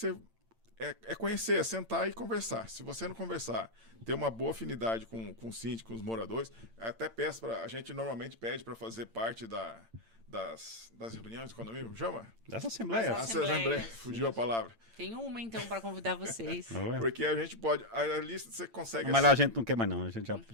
É conhecer, é sentar e conversar. Se você não conversar, ter uma boa afinidade com o síndico, com os moradores, até peço a gente normalmente pede para fazer parte das reuniões de condomínio, chama? Das assembleias. Assembleia, fugiu a palavra. Tem uma, então, para convidar vocês. Porque a gente pode, a lista você consegue... Mas lá a gente não quer mais não, a gente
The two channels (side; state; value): left; late; 8.8 ms